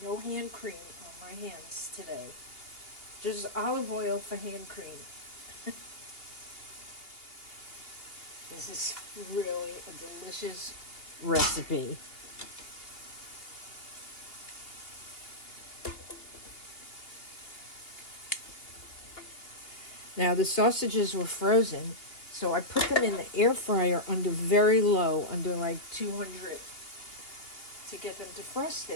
No hand cream on my hands today. Just olive oil for hand cream. This is really a delicious recipe. Now the sausages were frozen, so I put them in the air fryer under very low, under like 200, to get them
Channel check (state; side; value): late; right; 2.7 ms